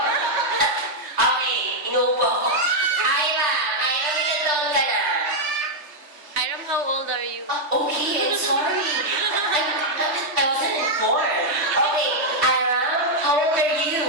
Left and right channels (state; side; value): late; left; 3.4 ms